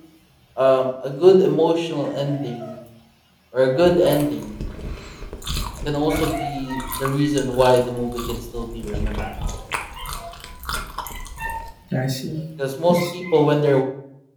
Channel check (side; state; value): both; identical; correlation 1.00